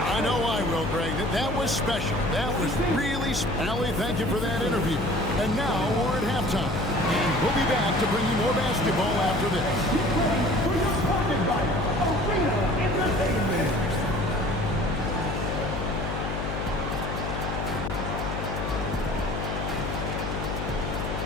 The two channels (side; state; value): left; noise; hum, 4 dB below the sound